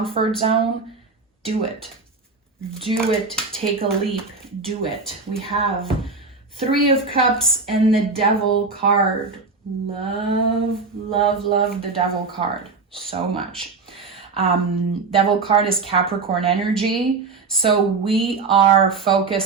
zone, do it. Do it. Take a leap. Do it. We have 3 of Cups and the Devil card. Love, love, love the Devil card so much. Devil card is Capricorn energy. So we are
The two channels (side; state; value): left; quieter; 4.3 dB